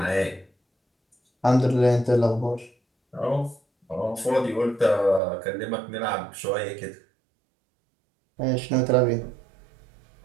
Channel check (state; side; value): drops out; left; at 5.2 s